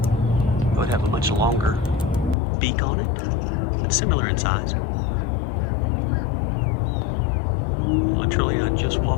it would have a much longer beak on it, but similar in size. Literally, I just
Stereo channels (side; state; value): right; drops out; at 2.4 s